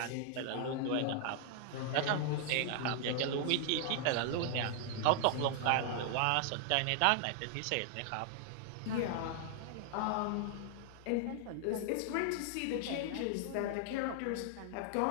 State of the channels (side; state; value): both; different; correlation 0.00